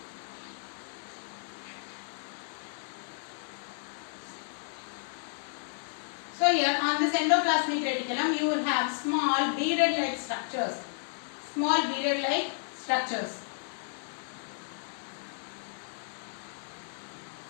So here on this endoplasmic reticulum, you will have small beaded-like structures. Small beaded-like structures.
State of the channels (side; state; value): right; silent; 55 dB below the other